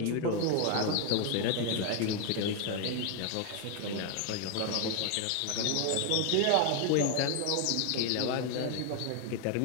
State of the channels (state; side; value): different; both; correlation 0.01